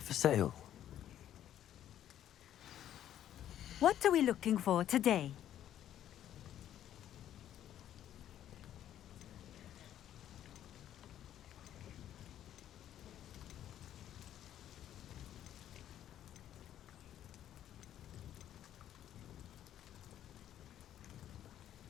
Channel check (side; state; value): right; quieter; 11.2 dB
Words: for sale? What are we looking for today?